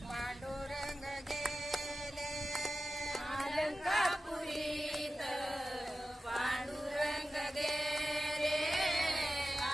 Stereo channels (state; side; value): normal; both; correlation 0.94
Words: पांडुरंग गेले अलंकापुरीत पांडुरंग गेले